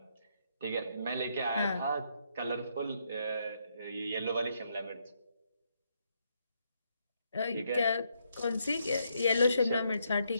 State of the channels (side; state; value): both; inverted; correlation -0.76